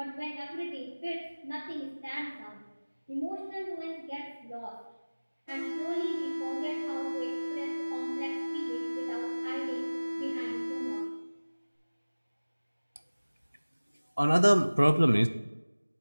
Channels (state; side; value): inverted; both; correlation -1.00